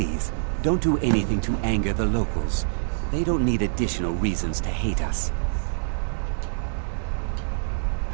don't do anything to anger the locals. They don't need additional reasons to hate us.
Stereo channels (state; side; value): silent; left; digital silence